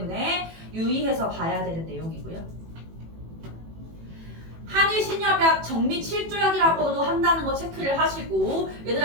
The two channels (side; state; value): left; late; 18 ms